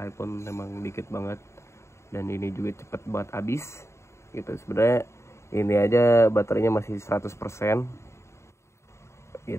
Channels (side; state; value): right; late; 0.13 ms